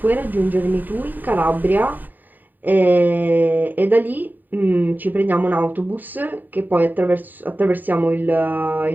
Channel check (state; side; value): late; left; 0.088 ms